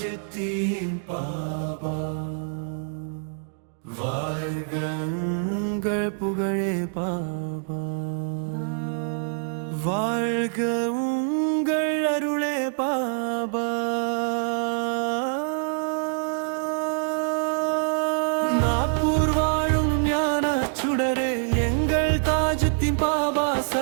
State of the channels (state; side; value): silent; left; digital silence